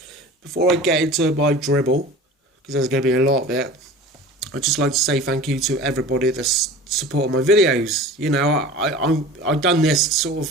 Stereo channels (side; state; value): both; normal; correlation 0.38